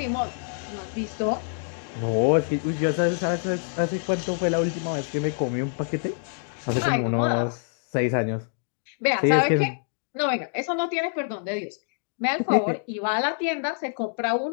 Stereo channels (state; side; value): silent; right; digital silence